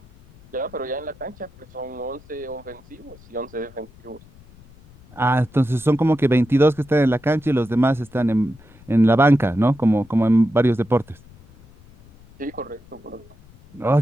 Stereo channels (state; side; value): noise; left; rumble, 25 dB below the sound